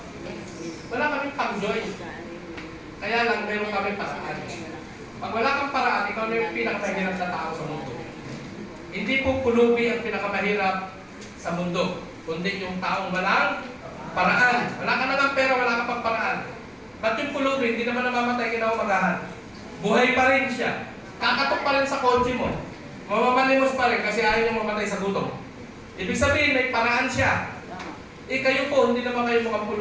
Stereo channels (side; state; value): both; identical; correlation 1.00